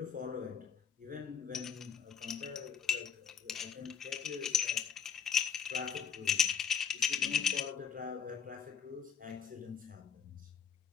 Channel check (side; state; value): right; quieter; 7.1 dB